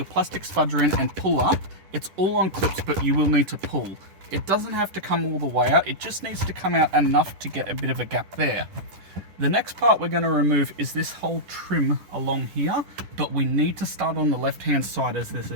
plastic spudger in and pull up. It's all on clips, but you will need to pull. It doesn't have to come all the way out, it just needs to come out enough to get a bit of a gap there. The next part we're going to remove is this whole trim along here, but we need to start on the left hand side as there's a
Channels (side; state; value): left; late; 10 ms